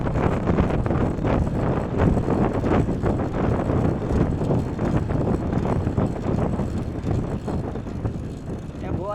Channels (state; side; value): identical; both; correlation 1.00